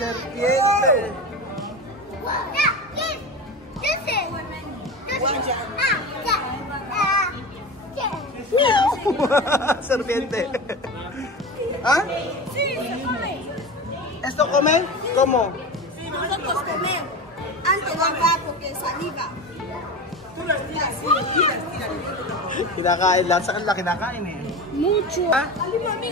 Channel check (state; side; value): normal; both; correlation 0.27